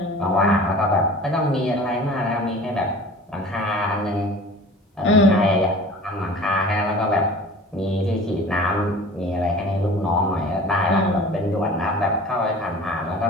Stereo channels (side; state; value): both; normal; correlation 0.42